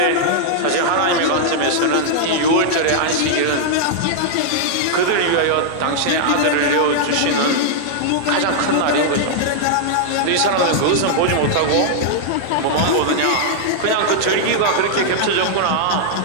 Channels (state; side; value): different; both; correlation -0.01